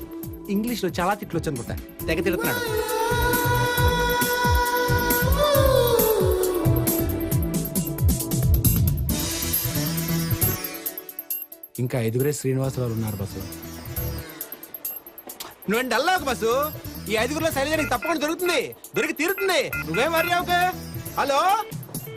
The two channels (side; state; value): both; identical; correlation 1.00